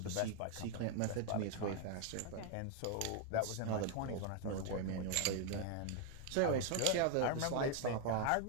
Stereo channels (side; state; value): both; different; correlation 0.01